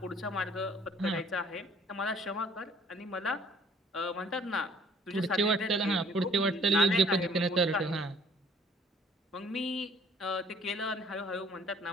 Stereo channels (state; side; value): normal; both; correlation 0.56